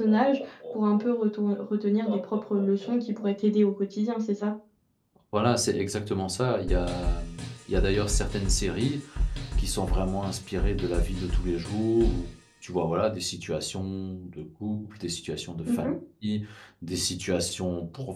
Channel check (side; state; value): both; identical; correlation 1.00